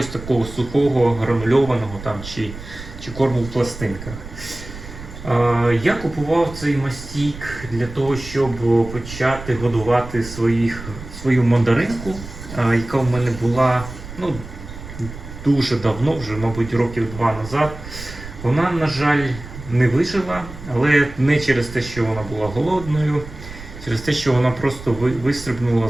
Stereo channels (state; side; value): noise; right; rumble, 13 dB below the sound